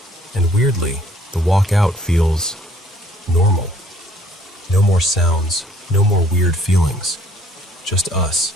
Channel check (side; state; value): both; normal; correlation 0.60